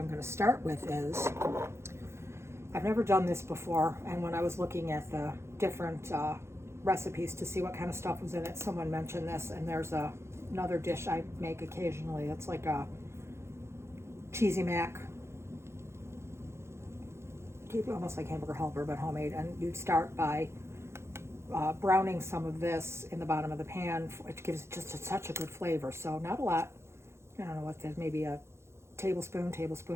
going to start with is, I've never done this before, and when I was looking at the different recipes to see what kind of stuff was in it, someone mentioned this, and there's another dish I make occasionally. It's like a cheesy mac, almost like hamburger helper, but homemade. And you start by browning some of this in the bottom of the pan, which gives it just such a good flavor. So not a lot. I don't know what that is, maybe a tablespoon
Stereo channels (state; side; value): late; left; 0.13 ms